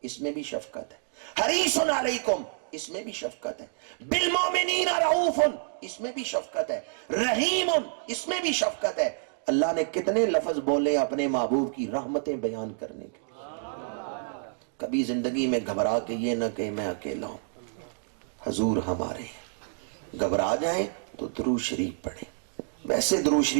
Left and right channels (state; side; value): silent; left; digital silence